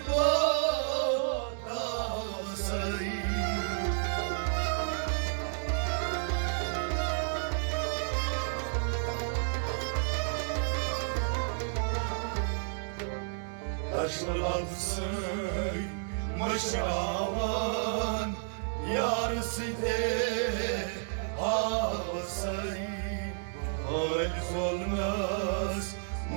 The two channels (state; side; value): silent; left; digital silence